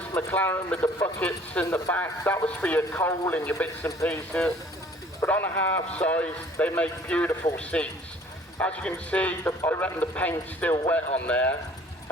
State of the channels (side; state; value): both; normal; correlation 0.54